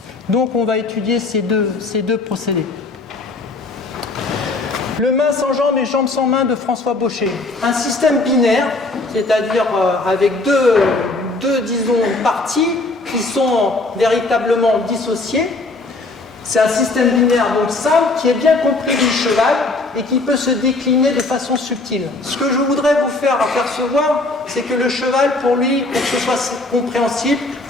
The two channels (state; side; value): quieter; right; 3.2 dB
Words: Donc on va étudier ces deux procédés. Le main sans jambes et jambes sans main de François Baucher. Un système binaire, c'est-à-dire avec deux parties qui sont véritablement dissociées. C'est un système binaire donc simple qui est bien compris du cheval et qui peut se décliner de façon subtile. Ce que je voudrais vous faire apercevoir, c'est que le cheval, pour lui, pour que ce soit compréhensible,